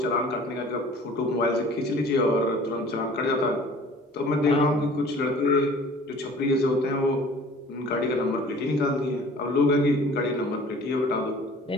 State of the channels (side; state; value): both; normal; correlation 0.48